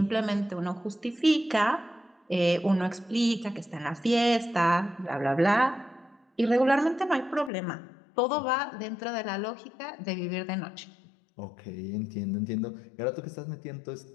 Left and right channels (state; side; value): drops out; right; at 7.5 s